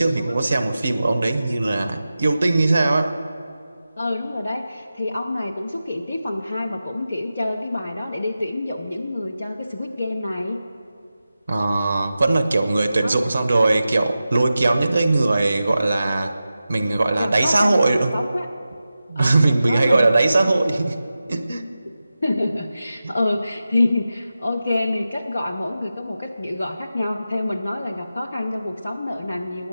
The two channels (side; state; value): both; inverted; correlation -0.93